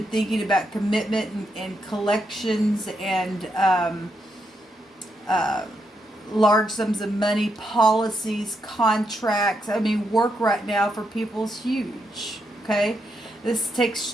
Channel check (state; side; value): normal; both; correlation 0.81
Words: thinking about commitment and collections and large sums of money, policies, contracts. I mean, work right now for people is huge. Okay? This takes